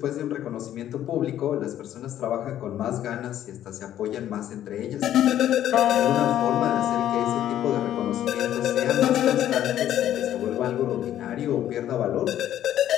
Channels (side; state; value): right; quieter; 11.7 dB